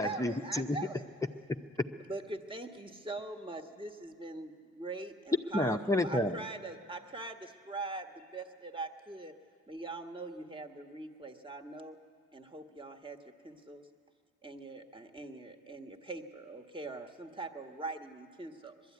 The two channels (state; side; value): normal; both; correlation 0.55